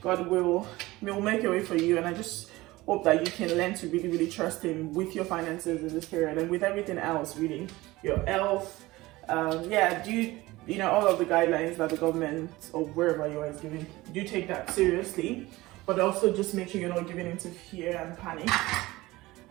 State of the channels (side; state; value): left; quieter; 19.4 dB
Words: will make a way for you, and I just hope that you can learn to really trust Him with your finances in this period and with everything else, really, your health. Yeah, you know, all of the guidelines that the government or wherever you are is giving, do take that seriously, but also just make sure you're not giving into fear and panic,